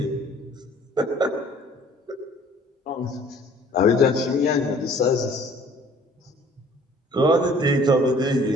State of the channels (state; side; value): normal; both; correlation 0.54